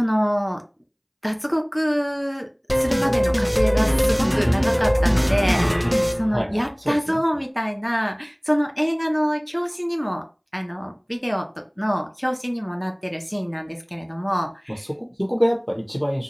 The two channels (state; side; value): identical; both; correlation 1.00